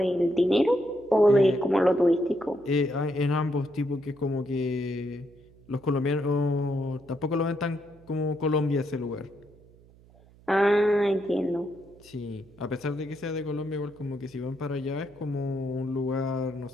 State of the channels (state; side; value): noise; right; hum, 26 dB below the sound